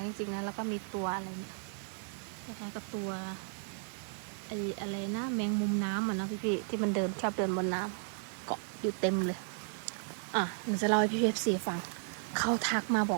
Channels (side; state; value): left; silent; digital silence